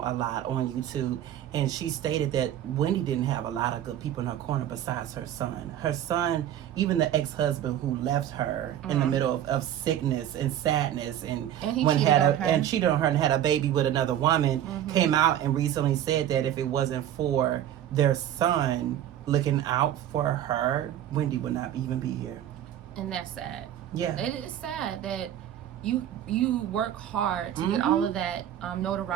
a lot on YouTube, and she stated that Wendy didn't have a lot of good people in her corner besides her son. Her son, even the ex-husband who left her in the middle of sickness and sadness, and cheated on her and had a baby with another woman, came out and recently said that if it wasn't for their son looking out for her, Wendy would not even be here. And that's sad. Yeah. It is sad that you work hard to get all of that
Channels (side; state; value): left; quieter; 11.3 dB